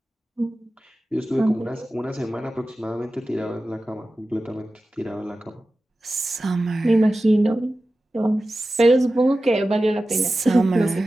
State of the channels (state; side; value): normal; both; correlation 0.94